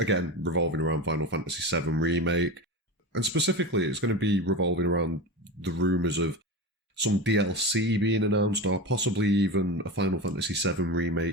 again, revolving around Final Fantasy VII Remake, and specifically it's going to be revolving around the rumours of some DLC being announced, or possibly even a Final Fantasy VII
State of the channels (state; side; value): normal; both; correlation 0.24